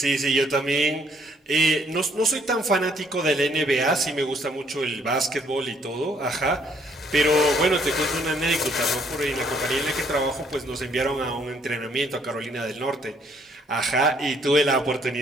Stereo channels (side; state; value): both; normal; correlation 0.66